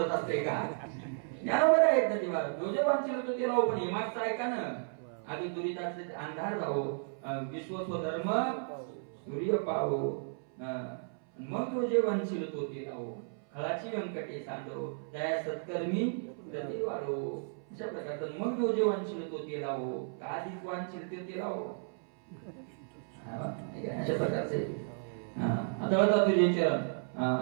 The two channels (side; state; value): left; silent; 55 dB below the other